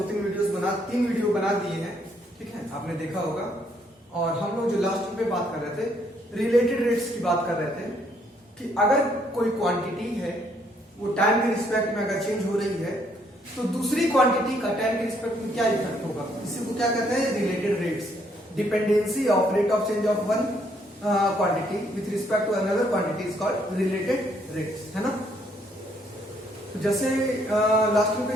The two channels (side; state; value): both; normal; correlation 0.69